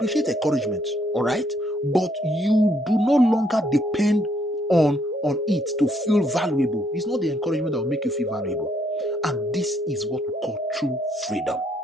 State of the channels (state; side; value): normal; both; correlation 0.71